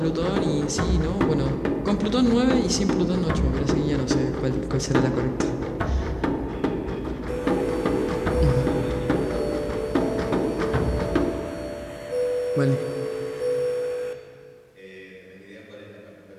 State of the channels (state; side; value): identical; both; correlation 1.00